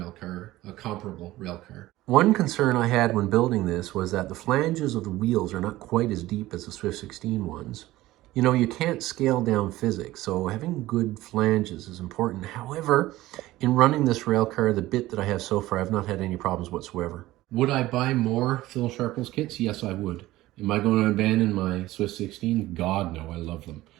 car, a comparable rail car. One concern I had when building this was that the flanges of the wheels are not quite as deep as the Swift 16 ones. You know, you can't scale down physics, so having good flanges is important. However, in running this rail car, the bit that I have so far, I've not had any problems whatsoever. Would I buy more Phil Sharples kits? Yes, I would. Am I going to abandon my Swift 16? God, no, I love them.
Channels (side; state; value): left; quieter; 16.9 dB